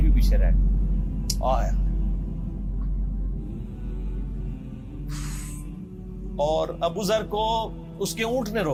بھی پیچھے رہ گئے, آیا. اور ابو ذر کو اس کے اونٹ نے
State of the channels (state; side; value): identical; both; correlation 1.00